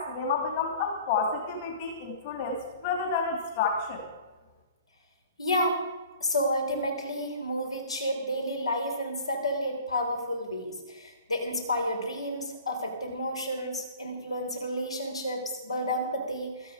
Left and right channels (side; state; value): both; inverted; correlation -0.47